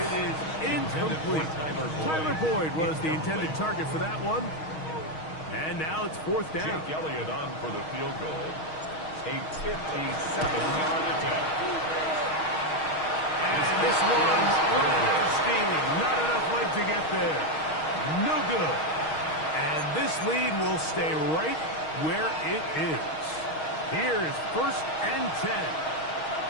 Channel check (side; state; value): right; late; 6.4 ms